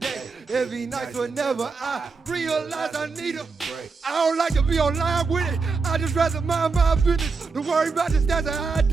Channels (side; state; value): left; quieter; 4.6 dB